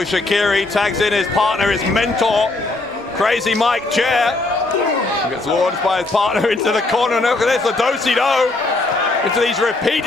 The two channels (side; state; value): right; quieter; 3.1 dB